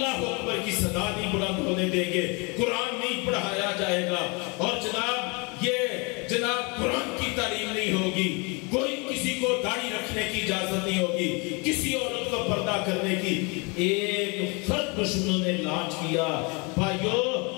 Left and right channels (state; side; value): quieter; right; 30.5 dB